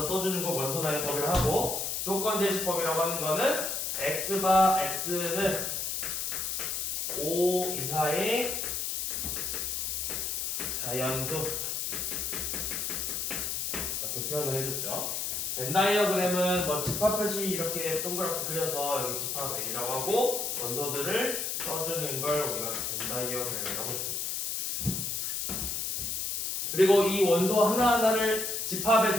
써주는 걸 원소나열법이라고 하고 조건제시법이라고 하는 거는 x바 x는 5 이하의 자연수 이렇게 표현을 해줬죠. 벤다이어그램은 집합 표시 이렇게 동그랗게 그려서 여기 집합 A라고 하고 원소들을 써주는 걸 우리가 벤다이어그램이라고 했었죠. 그리고 이 원소 하나하나를 집합에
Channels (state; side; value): noise; left; hiss, 1 dB below the sound